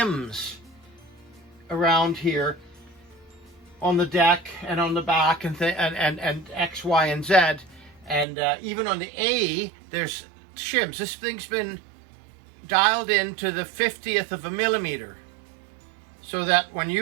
around here on the deck and on the back and X, Y, and Z, and even on the A there's shims. This thing's been dialed in to the 50th of a millimeter, so that when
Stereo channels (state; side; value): drops out; left; at 8.2 s